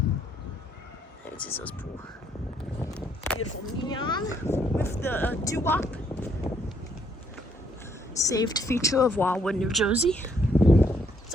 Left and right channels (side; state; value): both; normal; correlation 0.70